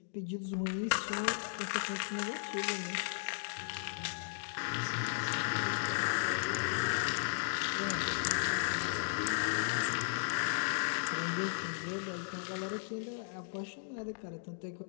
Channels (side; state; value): right; silent; digital silence